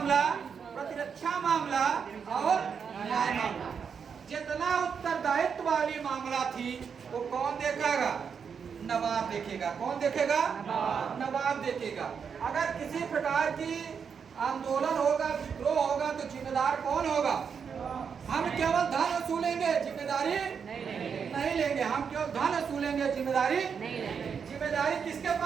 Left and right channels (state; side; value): quieter; left; 6.6 dB